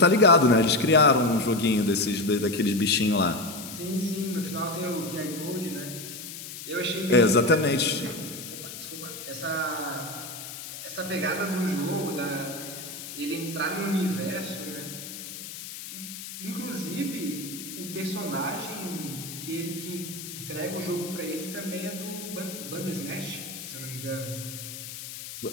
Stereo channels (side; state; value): left; noise; hiss, 10 dB below the sound